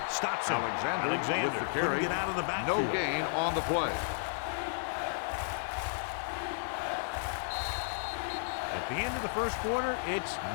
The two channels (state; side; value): silent; right; 56 dB below the other